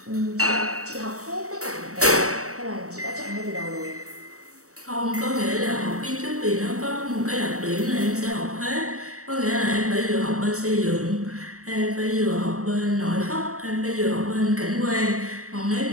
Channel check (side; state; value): left; late; 0.65 ms